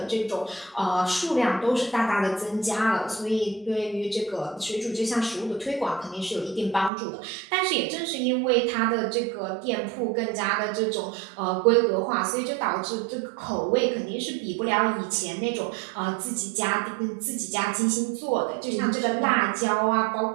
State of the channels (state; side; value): drops out; left; at 6.9 s